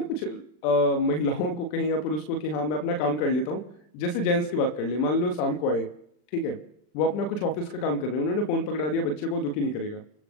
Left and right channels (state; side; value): late; right; 39 ms